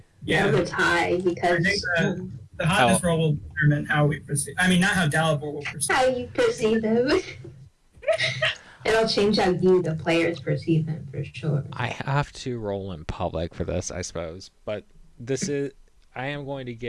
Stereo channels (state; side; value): identical; both; correlation 1.00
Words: Yeah. That was high I because think the hotness roll will determine how we proceed. I mean, not how Dalibor will proceed. how you perceive them. It'll change how you, the players, perceive them for sure. I have to roll in public for this, I suppose, but I am going to